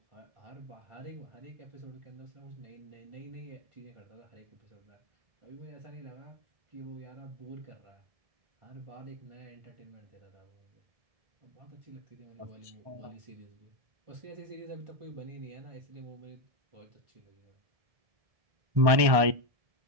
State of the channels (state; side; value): late; left; 1.2 ms